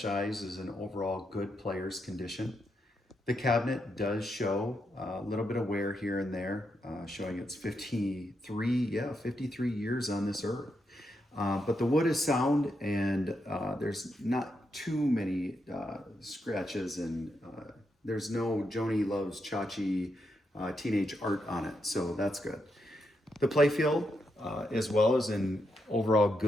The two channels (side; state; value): both; normal; correlation 0.82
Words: Eyes is in overall good player's condition. The cabinet does show a little bit of wear here and there, showing it's 53 years on this earth. But the wood is sound and there's not too many scratches and there's no Joni Loves Chachi teenage art on it, so that's good. The playfield as well is in overall